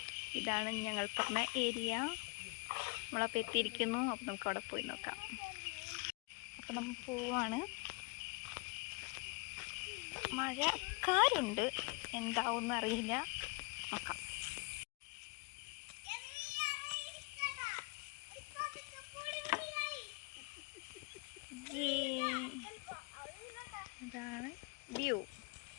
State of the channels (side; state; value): right; quieter; 30.1 dB